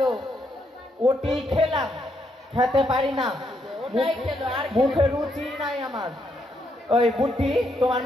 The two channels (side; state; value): both; normal; correlation 0.77